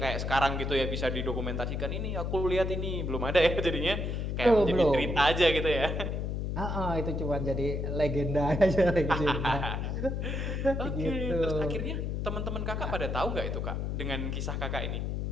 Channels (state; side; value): noise; left; hum, 2 dB below the sound